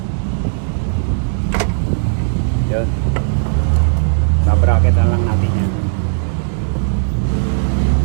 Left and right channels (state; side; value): silent; left; digital silence